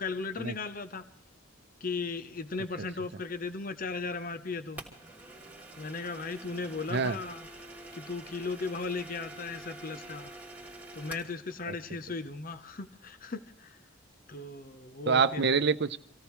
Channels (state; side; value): normal; both; correlation 0.09